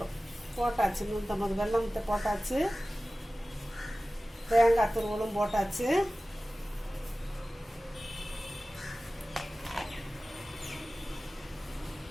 போட்டாச்சு. 150 வெல்லம் போட்டாச்சு. தேங்காய் துருவலும் போட்டாச்சு.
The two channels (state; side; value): normal; both; correlation 0.97